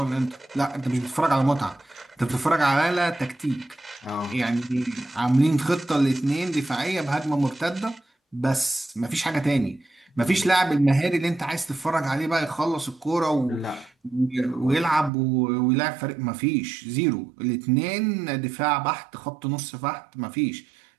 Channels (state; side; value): drops out; left; at 15.1 s